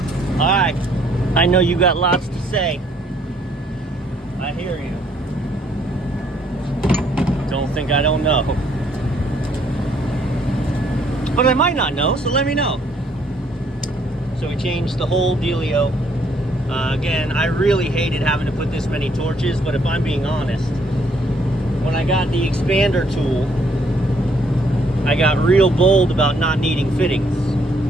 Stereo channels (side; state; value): both; normal; correlation 0.67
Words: All right. I know you got lots to say. I hear you. Don't think I don't know. But I might not know, so let me know. So we changed the whole dealio. Again, I really hated having to put this many torches, but if I'm being honest, when I got the expander tool, I got real bold about not needing fittings.